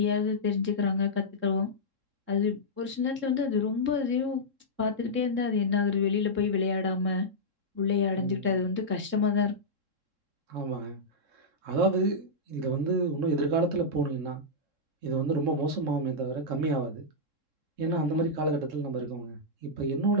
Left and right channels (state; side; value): late; left; 3.7 ms